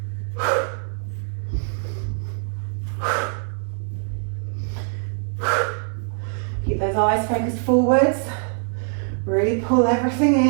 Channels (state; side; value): silent; left; 63 dB below the other